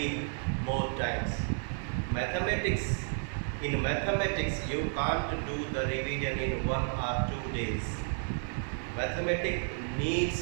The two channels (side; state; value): left; silent; 56 dB below the other